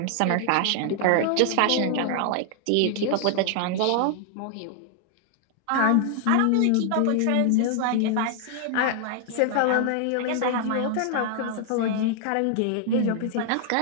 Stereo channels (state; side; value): different; both; correlation 0.00